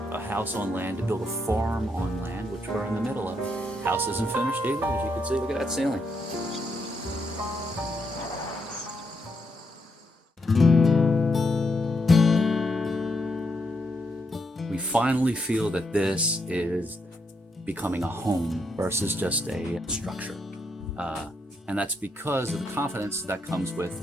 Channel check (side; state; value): both; normal; correlation 0.79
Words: a house on land, to build a farm on land, which we're in the middle of, house isn't finished either, as you can see. Look at that ceiling. We finally feel that this is becoming a home versus just a structure. And that's because of the confidence that comes